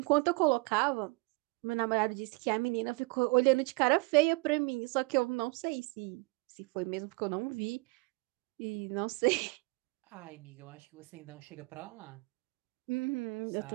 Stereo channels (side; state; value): left; quieter; 27.6 dB